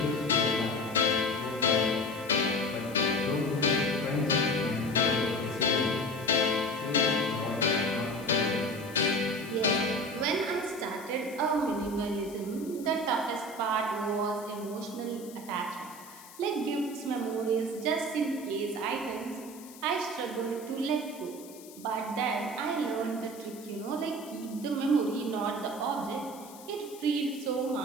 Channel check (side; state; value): left; noise; hiss, 19 dB below the sound